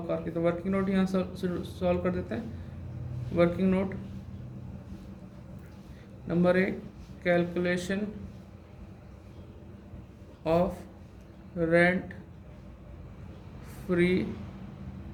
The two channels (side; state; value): both; identical; correlation 1.00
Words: कार की। तो वर्किंग नोट यहाँ सॉल्व कर देते हैं। Working note number 1, calculation of rent free